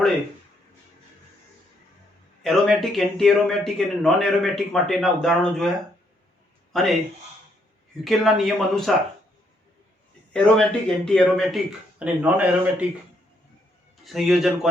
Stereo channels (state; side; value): normal; both; correlation 0.73